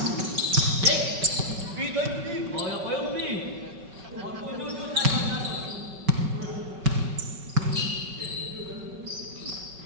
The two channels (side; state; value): left; late; 5.3 ms